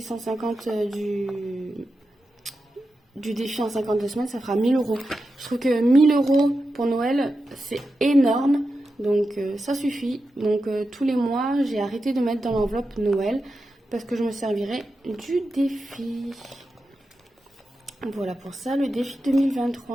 du défi en 52 semaines, ça fera 1000 euros. Je trouve que 1000 euros pour Noël, c'est énorme. Donc, ça suffit. Donc, tous les mois, j'ai arrêté de mettre dans l'enveloppe Noël parce que je me servirai du défi. Voilà pour ça. Le défi 2023,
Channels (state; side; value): normal; both; correlation 0.90